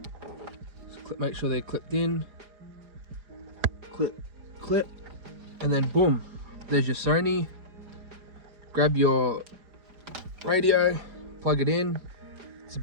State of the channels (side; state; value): left; late; 4.9 ms